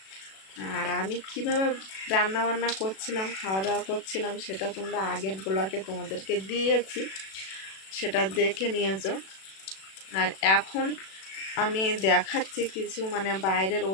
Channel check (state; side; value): late; right; 37 ms